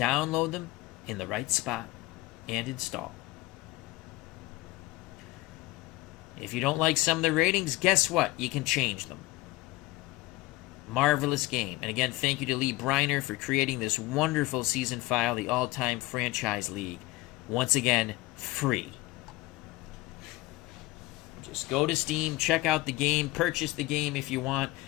them in the right spot and install. If you don't like some of the ratings, guess what? You can change them. Marvelous game. And again, thank you to Lee Briner for creating this wonderful season file, the all-time franchise league. Once again, free. Just go to Steam, check out the game, purchase the game if you want.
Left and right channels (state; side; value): quieter; right; 19.0 dB